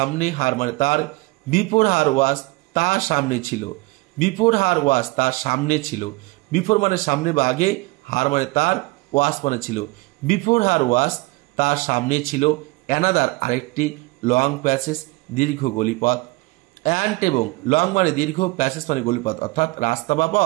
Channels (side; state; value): left; quieter; 23.3 dB